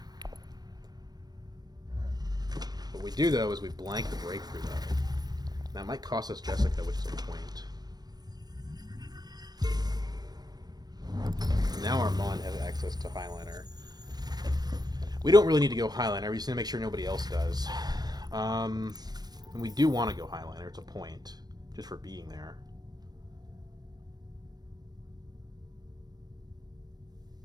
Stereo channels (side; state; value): left; late; 0.19 ms